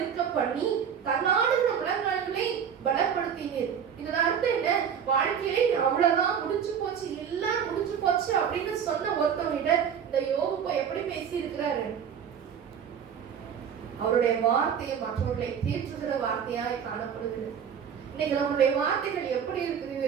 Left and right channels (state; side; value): quieter; left; 7.8 dB